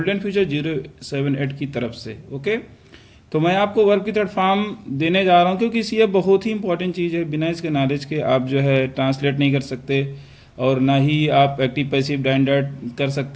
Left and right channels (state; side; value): identical; both; correlation 1.00